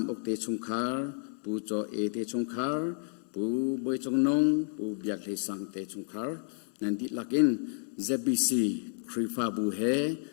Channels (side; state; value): right; silent; 57 dB below the other